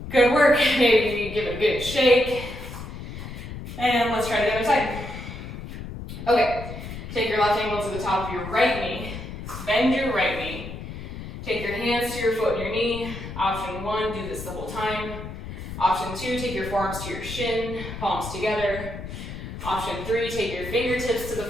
Good work, maybe give it a good shake. And let's try the other side. Okay, take your left ankle to the top of your right knee, bend your right knee, Take your hands to your foot and your knee. Option 1, do this the whole time. Option 2, take your forearms to your shin, palms together. Option 3, take your fingertips to the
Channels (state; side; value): noise; left; rumble, 9 dB below the sound